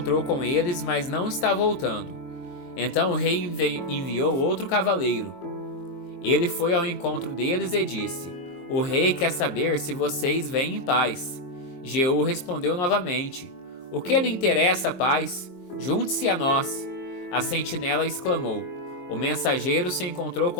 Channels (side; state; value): right; late; 22 ms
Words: com eles, mas não está voltando. Então o rei enviou outro cavaleiro. Ele foi ao encontro deles e disse: o rei quer saber se vocês vêm em paz. Jeú respondeu novamente: o que lhe interessa a paz? Junte-se a nós. A sentinela exclamou: o mensageiro se encontrou